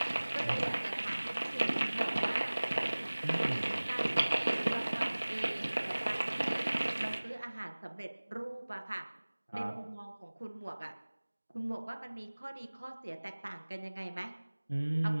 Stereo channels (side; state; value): both; inverted; correlation -1.00